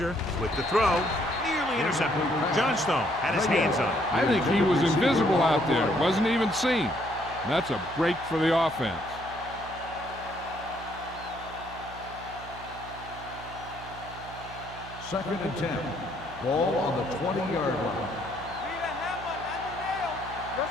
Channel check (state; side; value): noise; right; hum, 15 dB below the sound